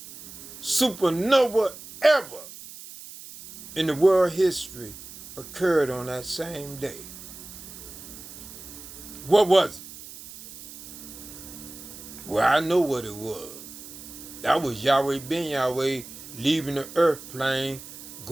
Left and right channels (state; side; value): noise; right; hiss, 15 dB below the sound